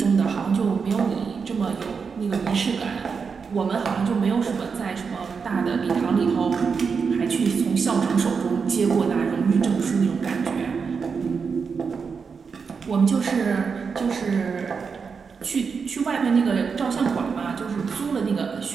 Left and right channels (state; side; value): quieter; left; 5.6 dB